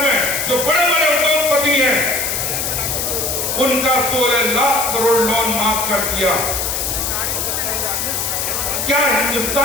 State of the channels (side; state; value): left; noise; hiss, 1 dB below the sound